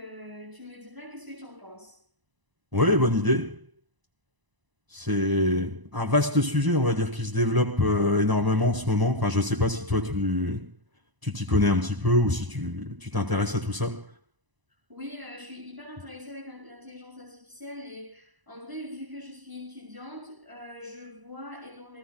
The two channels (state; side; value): late; left; 1.0 ms